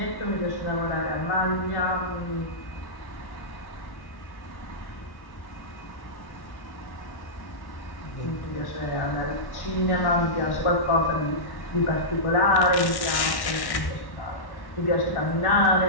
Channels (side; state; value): right; late; 1.1 ms